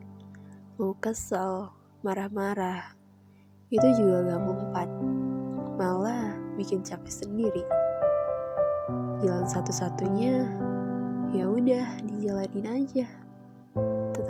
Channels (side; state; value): both; identical; correlation 1.00